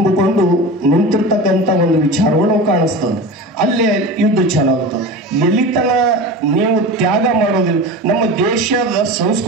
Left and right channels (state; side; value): normal; both; correlation 0.30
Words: ನಿಂತಿರ್ತಕ್ಕಂಥ ಒಂದು ವಿಚಾರಗಳು ಕಾಣಿಸ್ತದೆ. ಅಲ್ಲೇ ಯುದ್ಧ ಚಾಲಾಗುತ್ತದೆ. ಎಲ್ಲಿತನ ನೀವು ತ್ಯಾಗ ಮಾಡೋದಿಲ್ಲ. ನಮ್ಮ ದೇಶದ